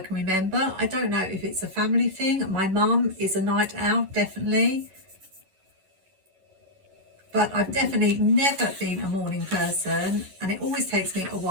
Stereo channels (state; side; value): late; left; 11 ms